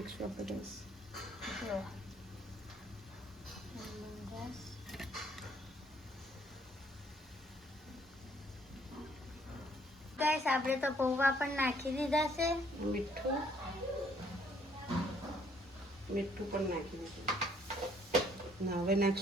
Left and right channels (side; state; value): both; normal; correlation 0.64